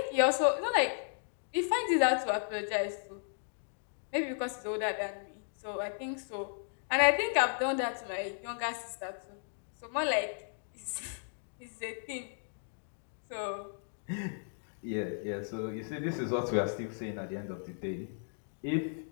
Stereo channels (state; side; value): silent; right; digital silence